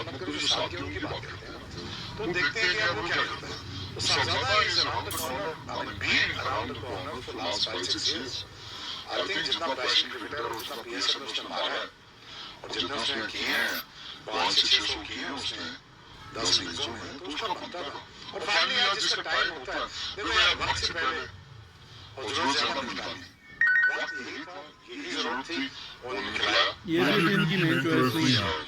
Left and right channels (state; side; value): identical; both; correlation 1.00